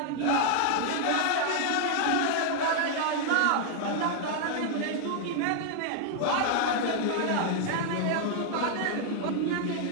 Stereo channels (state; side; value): different; both; correlation 0.00